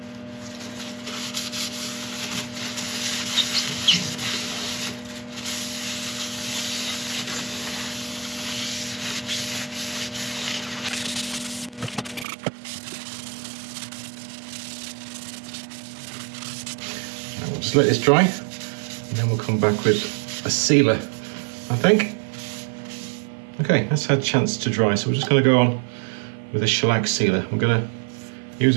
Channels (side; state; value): left; drops out; at 12.2 s